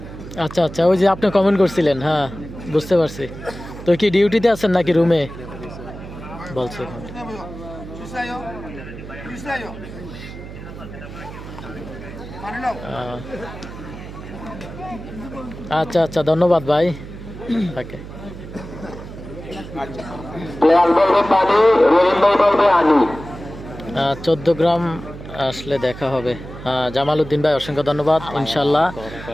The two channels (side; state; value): right; noise; hum, 13 dB below the sound